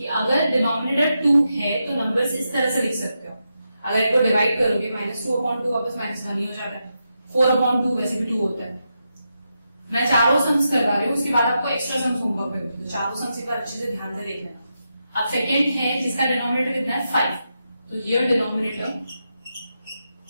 अगर डिनोमिनेटर 2 है तो नंबर्स इस तरह से लिख सकते हो। अगर इसको डिवाइड करोगे -2/2 वापस -1 ही हो जाता है, 4/2 वैसे भी 2 होता है। मैं चारों सम्स करवा रही हूँ, उसके बाद आपको एक्स्ट्रा सम्स होमवर्क में होगी, तो चारों सम्स एक बार अच्छे से ध्यान से देख लेना। अब सेकेंड है जिसका डिनोमिनेटर कितना है 5, तो here denominator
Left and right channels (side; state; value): both; inverted; correlation -0.86